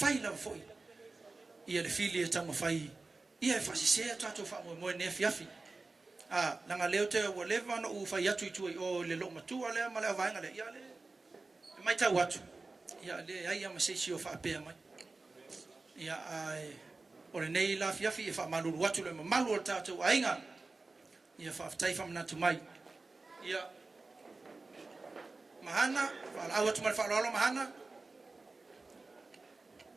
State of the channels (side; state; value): left; quieter; 3.6 dB